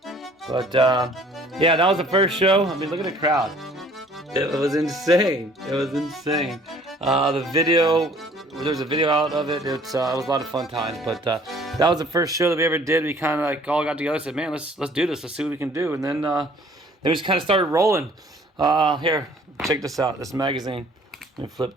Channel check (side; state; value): both; normal; correlation 0.55